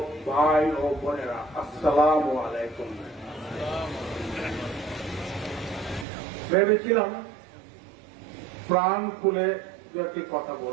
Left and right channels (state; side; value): drops out; left; at 6.1 s